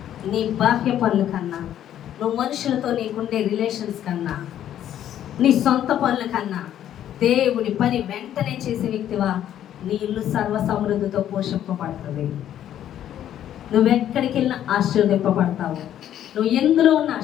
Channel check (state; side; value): quieter; right; 11.0 dB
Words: నీ బాహ్య పనుల కన్నా, నువ్వు మనుషులతో నీకుండే రిలేషన్స్ కన్నా, నీ సొంత పనుల కన్నా దేవుని పని వెంటనే చేసే వ్యక్తివా, నీ ఇల్లు సర్వ సమృద్ధితో పోషింపబడుతుంది. నువ్వెక్కడికి వెళ్ళినా ఆశీర్వదింపబడతావు. నువ్వు ఎందులో ఉన్న